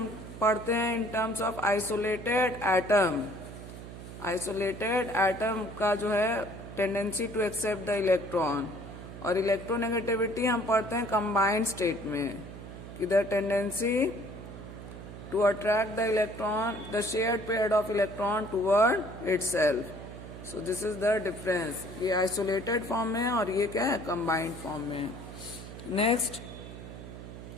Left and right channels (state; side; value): noise; right; hum, 12 dB below the sound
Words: पढ़ते हैं in terms of isolated atom. Isolated atom का जो है tendency to accept the electron, और electronegativity हम पढ़ते हैं कंबाइंड स्टेट में कि the tendency to attract the electron, the shared pair of electron toward itself. So this is the difference. ये isolated form में है और ये क्या है, combined form में. Next,